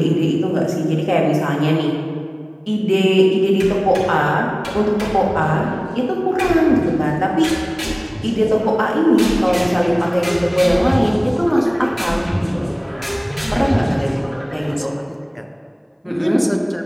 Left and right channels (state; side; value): identical; both; correlation 1.00